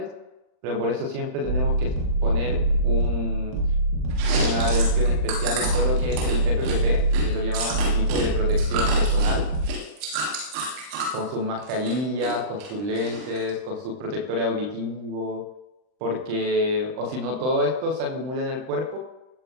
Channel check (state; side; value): late; left; 39 ms